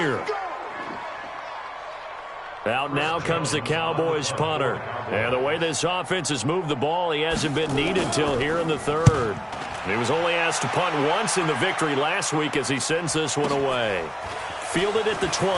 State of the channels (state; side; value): identical; both; correlation 1.00